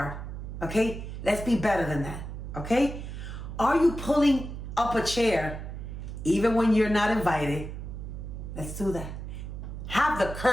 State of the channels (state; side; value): noise; right; hum, 8 dB below the sound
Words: Okay? Let's be better than that. Okay? Are you pulling up a chair even when you're not invited? Let's do that. Have the